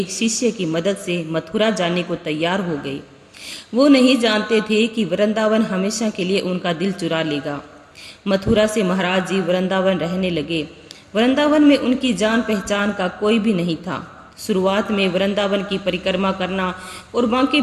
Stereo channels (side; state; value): both; identical; correlation 1.00